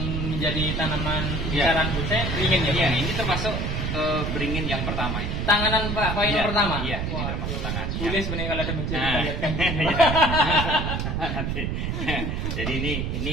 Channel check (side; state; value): right; noise; rumble, 1 dB below the sound